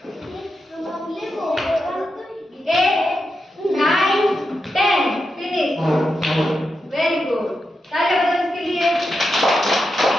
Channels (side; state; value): both; normal; correlation 0.87